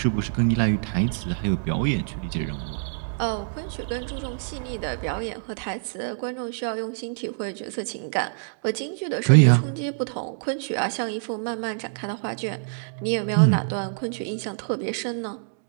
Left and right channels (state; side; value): silent; left; digital silence